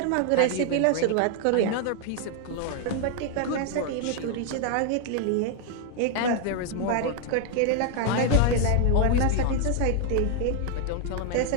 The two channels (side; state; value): both; different; correlation 0.00